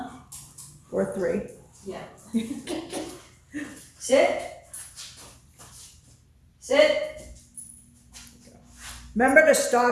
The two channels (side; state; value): both; identical; correlation 1.00